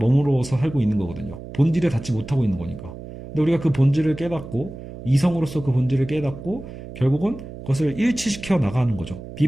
살고 있는 거거든요. 본질에 닿지 못하고 있는 거니까. 근데 우리가 그 본질을 깨닫고, 이성으로서 그 본질을 깨닫고, 결국은 그것을 일치시켜 나가는 거죠.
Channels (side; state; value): right; noise; hum, 13 dB below the sound